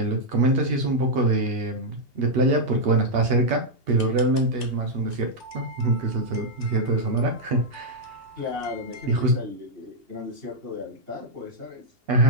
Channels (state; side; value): late; left; 2.8 ms